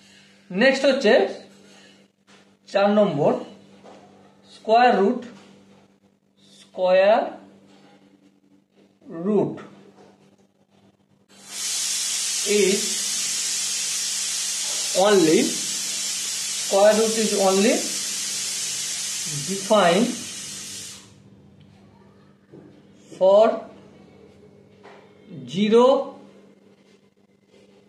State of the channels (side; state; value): both; identical; correlation 1.00